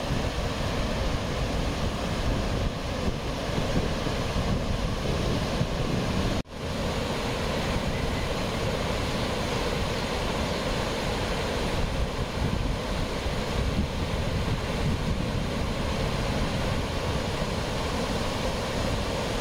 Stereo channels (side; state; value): both; identical; correlation 1.00